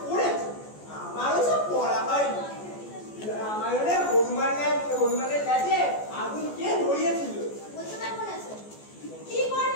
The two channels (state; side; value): late; right; 14 ms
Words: পড়েছো, আমারও সব পড়া হয়নি। রামায়ণে হনুমানের কাছে আগুন কে ধরিয়েছিল? বলতে পারবো না স্যার। কি করে